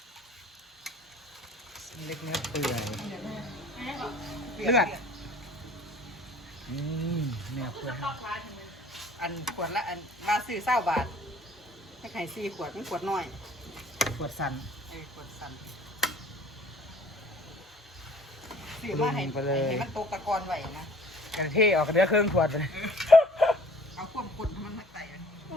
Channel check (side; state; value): both; normal; correlation 0.53